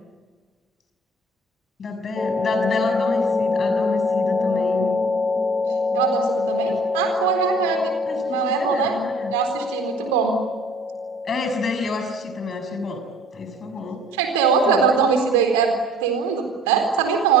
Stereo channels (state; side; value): normal; both; correlation 0.53